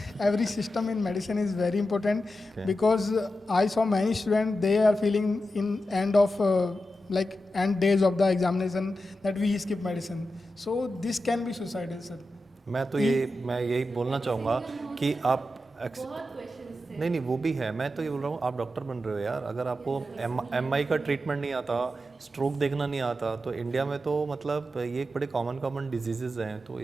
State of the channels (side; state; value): both; normal; correlation 0.90